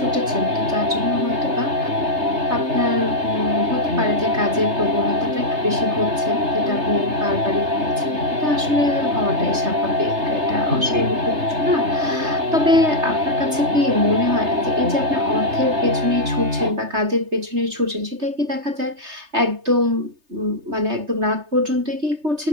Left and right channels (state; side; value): late; left; 3.3 ms